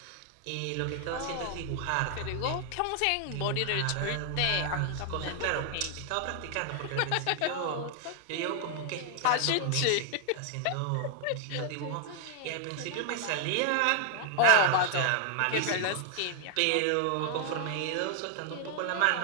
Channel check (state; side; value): different; both; correlation 0.00